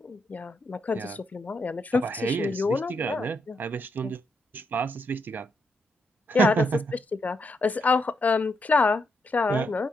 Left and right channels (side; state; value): both; normal; correlation 0.79